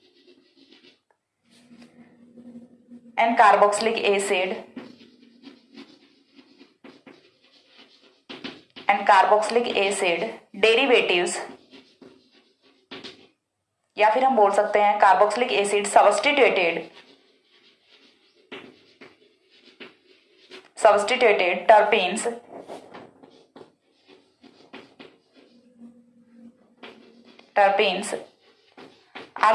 and carboxylic acid derivatives, या फिर हम बोल सकते हैं carboxylic acid substituted terpenes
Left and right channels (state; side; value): identical; both; correlation 1.00